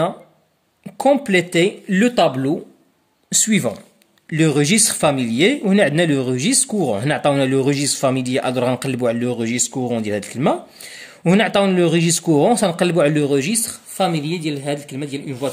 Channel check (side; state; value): both; identical; correlation 1.00